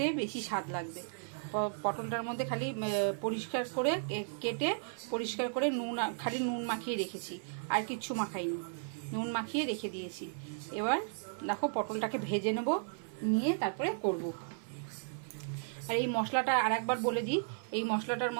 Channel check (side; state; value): left; silent; 54 dB below the other